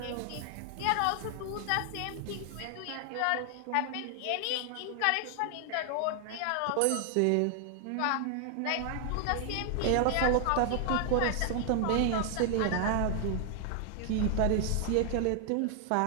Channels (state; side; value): different; both; correlation 0.00